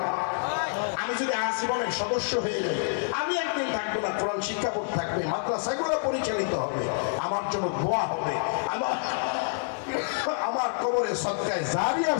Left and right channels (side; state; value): right; silent; 60 dB below the other